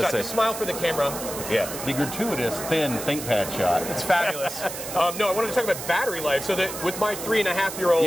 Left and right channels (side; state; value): right; noise; hiss, 8 dB below the sound